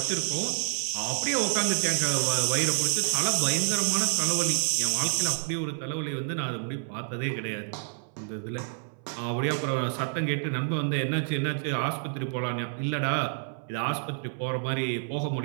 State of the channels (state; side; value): silent; left; 59 dB below the other